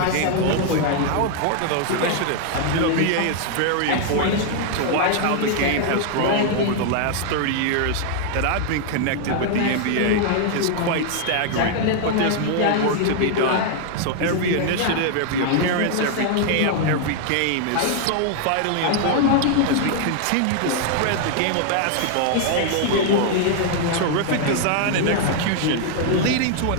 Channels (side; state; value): both; different; correlation 0.00